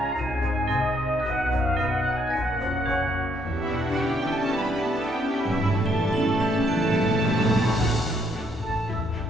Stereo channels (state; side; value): normal; both; correlation 0.72